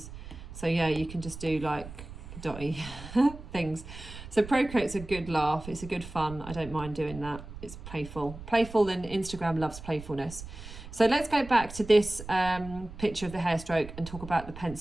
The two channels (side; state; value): right; noise; rumble, 13 dB below the sound